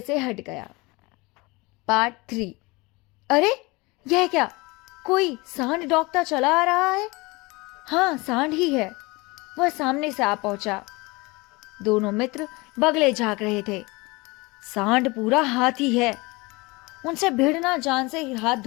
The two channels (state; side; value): quieter; right; 24.4 dB